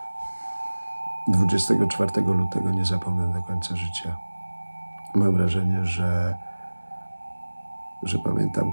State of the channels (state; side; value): inverted; both; correlation -1.00